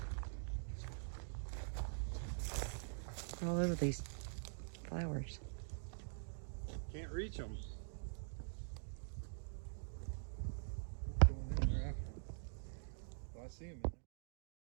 They're all over these flowers. Can't reach them. I see them.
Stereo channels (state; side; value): silent; left; digital silence